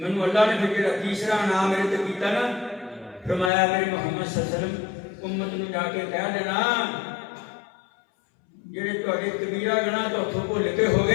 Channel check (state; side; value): drops out; right; at 3.5 s